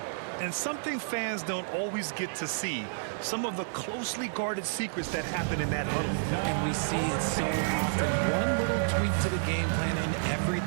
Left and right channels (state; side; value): silent; left; 58 dB below the other